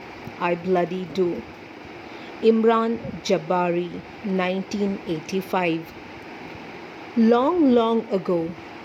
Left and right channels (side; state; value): both; identical; correlation 1.00